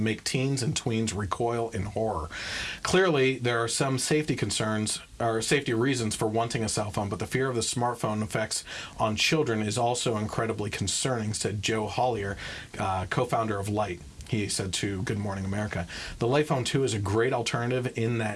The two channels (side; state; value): both; identical; correlation 1.00